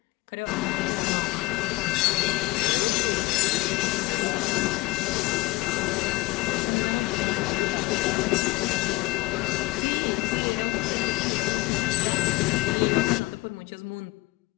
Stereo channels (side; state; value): right; quieter; 21.3 dB